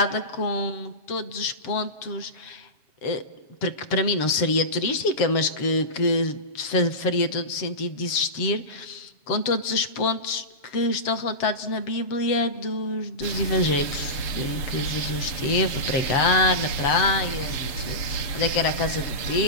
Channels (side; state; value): right; late; 7.3 ms